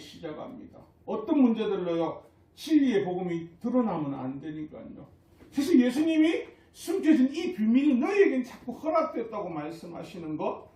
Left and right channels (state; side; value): identical; both; correlation 1.00